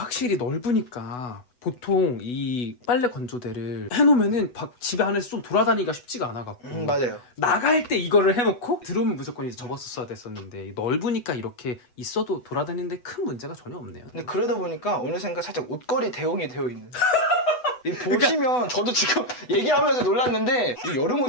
넓으니까 보통 이 빨래 건조대를 해놓으면은 집에 안에서 좀 돌아다니기가 쉽지가 않아갖고 맞아요. 나갈 때 이거를 해놓고 들어오면 무조건 이제 접었어야 됐었는데 넓으니까 이렇게 있어도 돌아다니는데 큰 문제가 전혀 없네요. 근데 그러다 보니까 어느샌가 살짝 옷걸이 대용이 되어 있는. 이 보시면 저도 지금 얘기하면서 놀랐는데 이 여름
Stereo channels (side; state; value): right; late; 8.1 ms